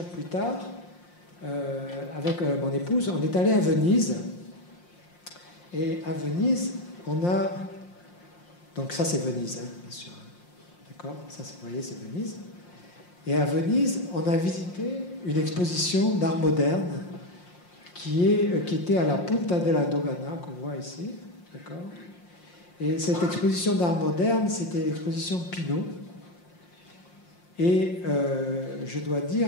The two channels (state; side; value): late; right; 5.7 ms